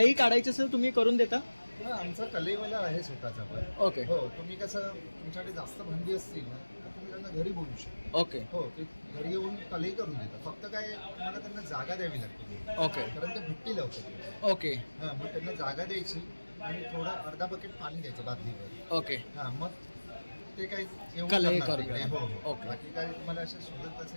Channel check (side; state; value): both; inverted; correlation -1.00